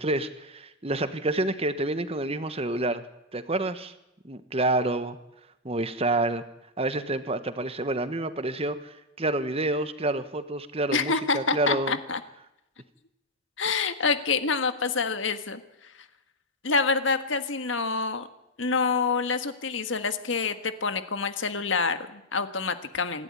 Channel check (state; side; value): normal; both; correlation -0.02